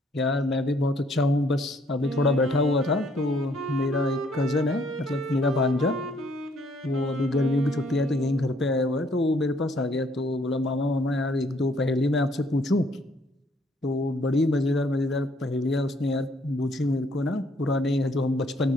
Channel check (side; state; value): both; normal; correlation 0.65